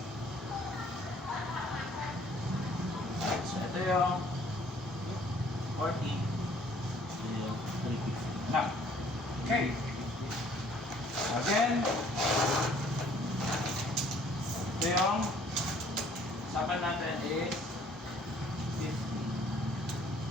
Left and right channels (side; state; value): both; normal; correlation 0.59